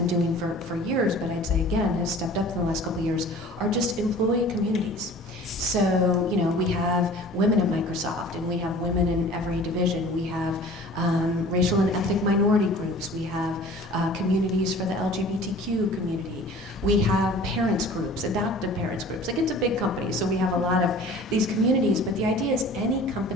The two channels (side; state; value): both; normal; correlation 0.45